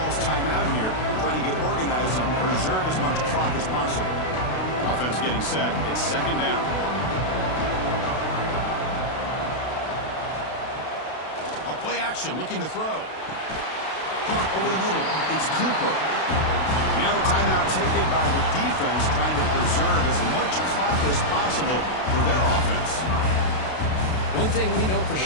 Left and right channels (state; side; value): late; right; 32 ms